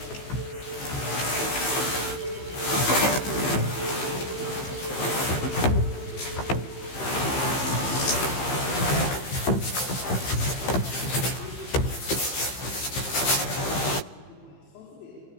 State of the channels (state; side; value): late; right; 15 ms